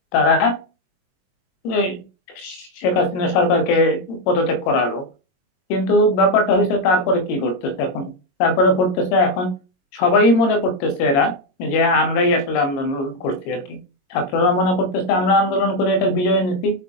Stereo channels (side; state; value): right; late; 22 ms